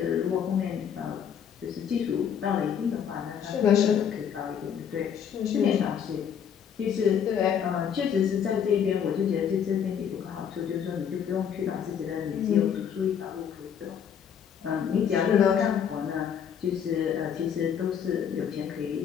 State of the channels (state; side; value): quieter; right; 8.1 dB